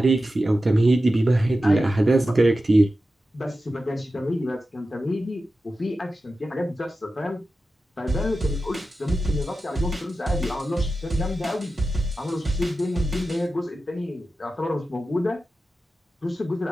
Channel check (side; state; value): both; normal; correlation 0.93